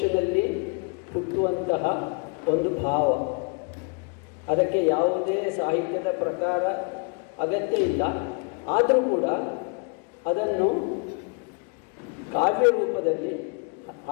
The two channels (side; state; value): right; quieter; 36.2 dB